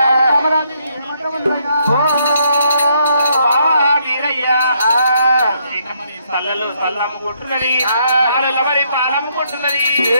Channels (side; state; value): both; inverted; correlation -0.73